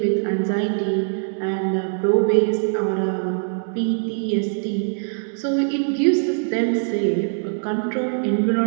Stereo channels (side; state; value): left; silent; digital silence